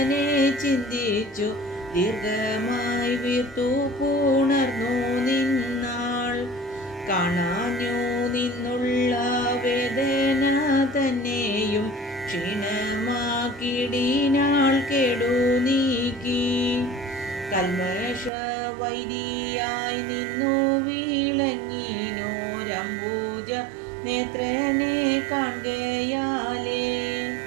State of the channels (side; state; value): left; drops out; at 18.3 s